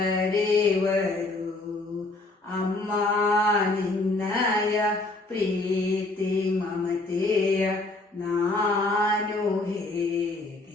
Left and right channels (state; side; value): quieter; right; 3.0 dB